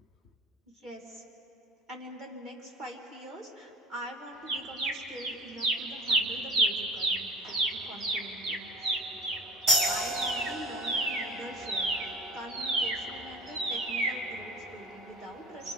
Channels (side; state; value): both; normal; correlation 0.41